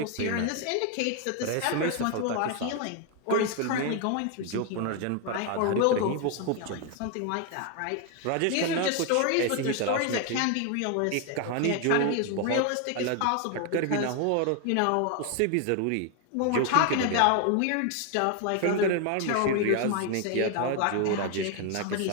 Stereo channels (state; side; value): different; both; correlation 0.01